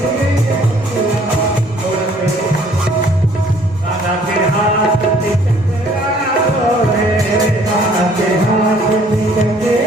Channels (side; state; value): both; normal; correlation 0.59